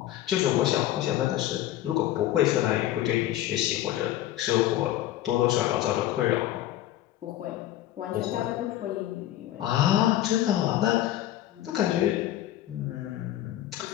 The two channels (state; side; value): quieter; right; 13.6 dB